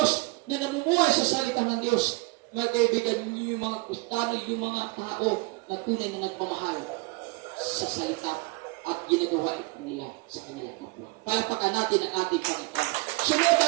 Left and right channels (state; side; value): quieter; left; 25.5 dB